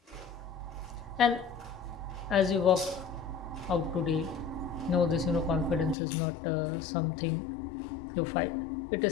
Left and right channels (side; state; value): right; drops out; at 6.0 s